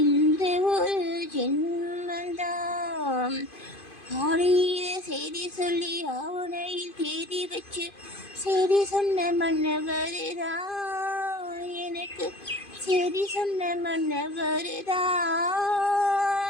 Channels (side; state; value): right; late; 2.5 ms